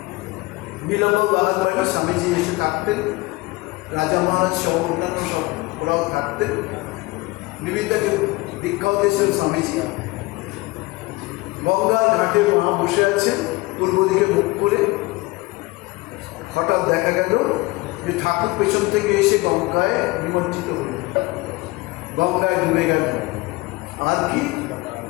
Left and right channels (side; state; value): right; quieter; 22.1 dB